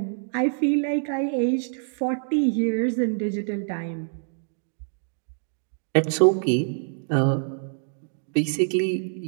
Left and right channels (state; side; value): silent; left; digital silence